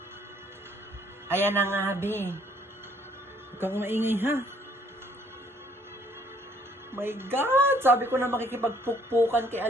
Ayan na nga, be. Huwag kang maingay, ha? My God! Sabi ko na makikipagpukpukan kay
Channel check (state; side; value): normal; both; correlation 0.63